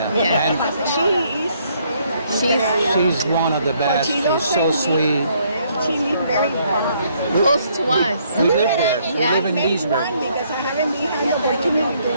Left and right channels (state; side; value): inverted; both; correlation -0.69